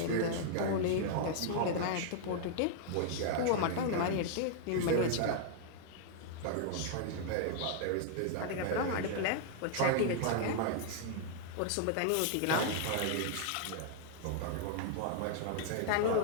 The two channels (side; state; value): both; different; correlation -0.01